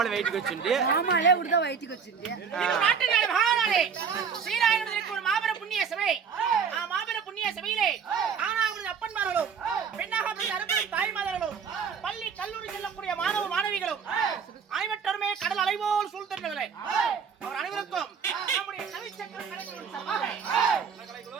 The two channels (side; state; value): left; quieter; 6.4 dB